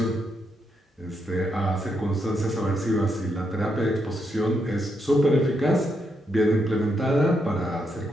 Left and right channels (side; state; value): both; normal; correlation 0.80